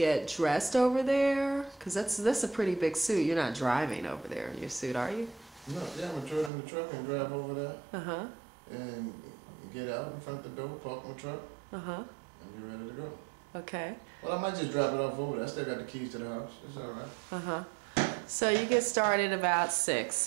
dressed over there? Because that's a pretty big suit. You're not driving over there in your suit, are you? No, yeah, I'm gonna throw it in the truck and drive over there. Uh-huh. And get out in front of the door, park my truck. Uh-huh. And be ready to go. Okay. Well, I might just drop it off over there. I still got the keys to the house. It's all right. Uh-huh. So you get started about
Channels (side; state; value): left; drops out; at 6.5 s